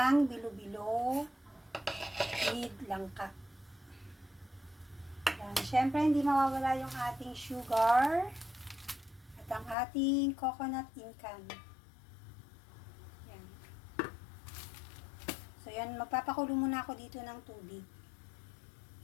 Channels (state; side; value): drops out; right; at 9.8 s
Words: bilo-bilo with langka. Yan. Siyempre, hindi mawawala yung ating sugar at ang ating coconut incan. Yan. So, yan. Magpapakulo muna ako dito ng tubig.